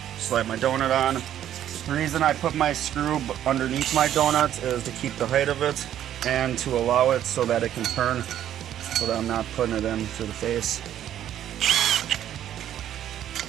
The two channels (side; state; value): left; quieter; 11.1 dB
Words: slide my donut on. The reason I put my screw underneath my donut is to keep the height of it and to allow it so that it can turn, so that I'm not putting it in to the face.